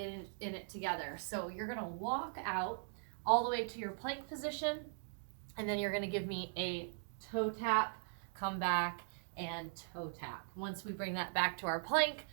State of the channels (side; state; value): left; silent; digital silence